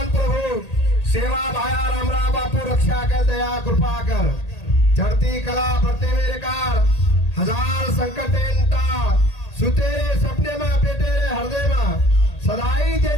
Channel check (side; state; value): right; late; 1.8 ms